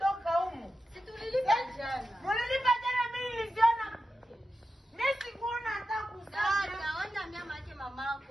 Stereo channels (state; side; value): normal; both; correlation 0.91